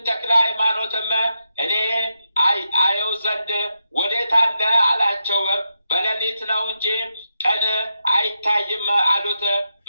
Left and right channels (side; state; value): both; inverted; correlation -0.85